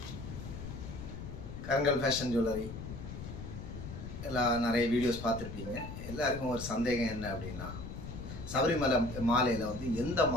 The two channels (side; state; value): left; noise; rumble, 9 dB below the sound